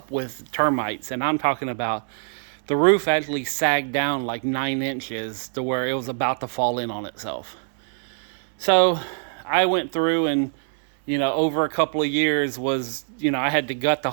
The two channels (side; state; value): left; silent; 59 dB below the other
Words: with termites. And I'm talking about the roof actually sagged down like 9 inches to where it was about to fall in on itself. So I went through and, you know, over a couple of years was, you know, I had to gut the